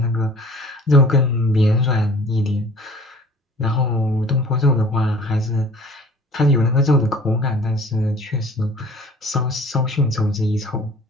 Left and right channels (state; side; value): normal; both; correlation 0.49